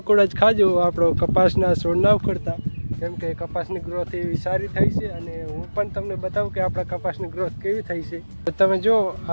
જ ખાજો, આપણો કપાસના છોડ ના ઉખડતા, કેમ કે કપાસની ગ્રોથ એવી સારી થઈ છે. અને હું પણ તમને બતાવું કે આપણા કપાસની ગ્રોથ કેવી થઈ છે. તો તમે જો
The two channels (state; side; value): inverted; both; correlation -1.00